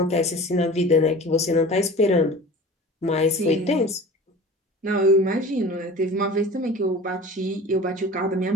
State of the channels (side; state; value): both; normal; correlation 0.39